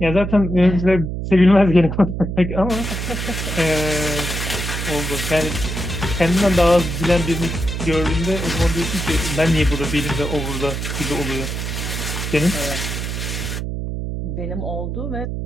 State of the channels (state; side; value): noise; right; hum, 4 dB below the sound